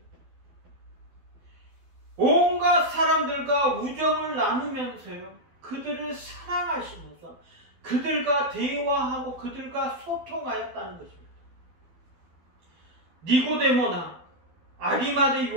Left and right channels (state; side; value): late; left; 12 ms